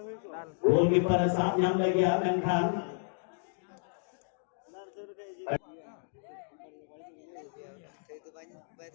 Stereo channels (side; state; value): right; silent; digital silence